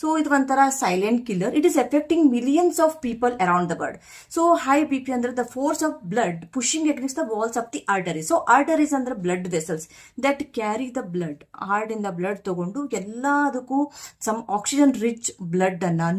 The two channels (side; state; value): both; identical; correlation 1.00